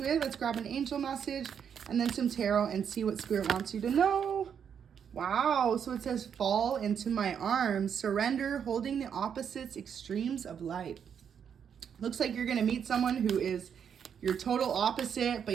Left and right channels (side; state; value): left; quieter; 7.8 dB